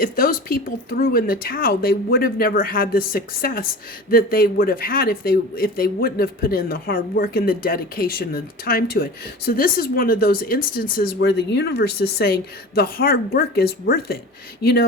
those people threw in the towel, they would have never had the success that they would have had if they wouldn't have put in the hard work and the dedication and the time to it. So this is one of those instances where the universe is saying the hard work is worth it.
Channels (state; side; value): normal; both; correlation 0.35